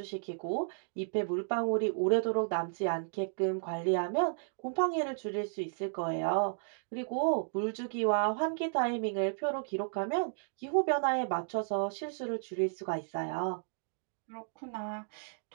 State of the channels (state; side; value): silent; left; digital silence